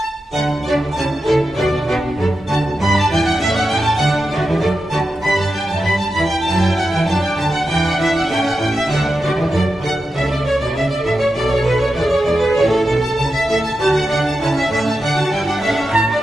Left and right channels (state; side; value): normal; both; correlation 0.89